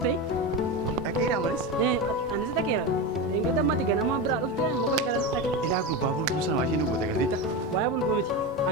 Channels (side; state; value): both; normal; correlation 0.19